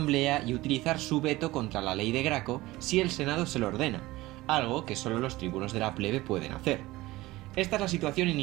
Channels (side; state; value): left; quieter; 18.7 dB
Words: y utilizar su veto contra la ley de Graco si el Senado se lo ordena, algo que solo los tribunos de la plebe pueden hacer. Esta es la situación